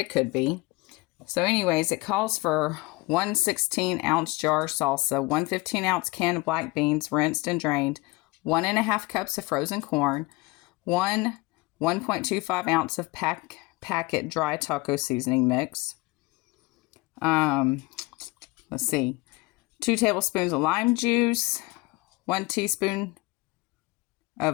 could be. So anyways, it calls for 1 16-ounce jar of salsa, 1 15-ounce can of black beans, rinsed and drained, 1.5 cups of frozen corn, 1.25 ounce of packet dry taco seasoning mix. Let's see, 2 tablespoons of lime juice, 1 teaspoon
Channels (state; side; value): quieter; right; 22.9 dB